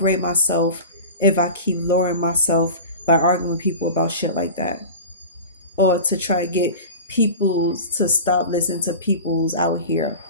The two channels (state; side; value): inverted; both; correlation -0.33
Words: myself if I keep lowering myself by arguing with people about shit like that, or to try to get people to stop listening to people's out here.